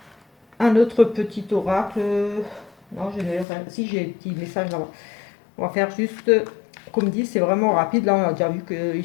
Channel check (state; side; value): drops out; right; at 3.5 s